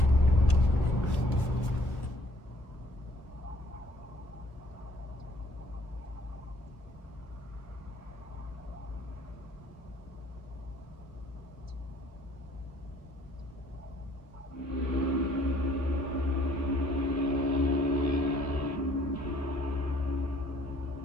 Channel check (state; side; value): late; right; 1.4 ms